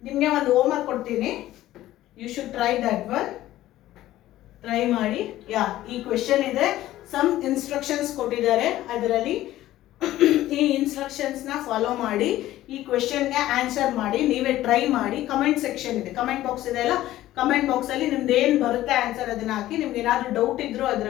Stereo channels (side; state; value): right; quieter; 14.7 dB